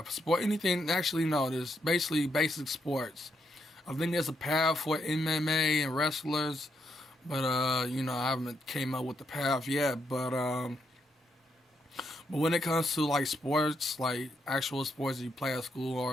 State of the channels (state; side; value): normal; both; correlation 0.78